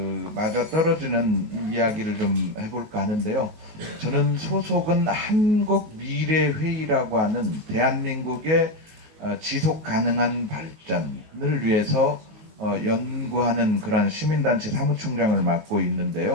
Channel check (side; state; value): left; late; 19 ms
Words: 맞아 떨어지는 이야기를 좀 해볼까 하는데요. 저는 소속은 한국미래회의라고 하는 대한민국의 지속 가능한 발전을 위해서 연구하는 그런 시민단체 사무총장을 맡고